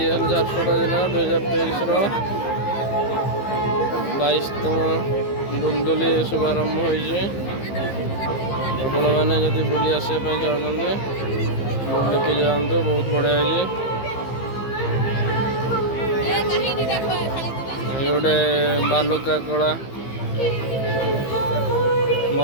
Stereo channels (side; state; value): right; late; 15 ms